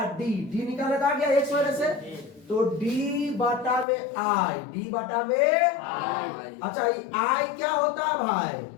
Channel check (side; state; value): right; drops out; at 3.9 s